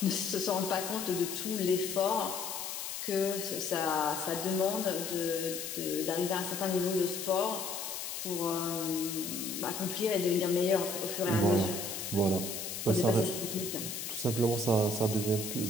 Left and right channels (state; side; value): noise; left; hiss, 5 dB below the sound